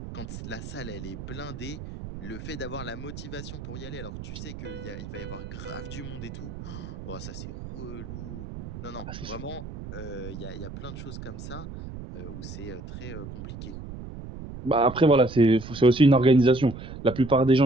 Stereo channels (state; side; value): noise; right; rumble, 10 dB below the sound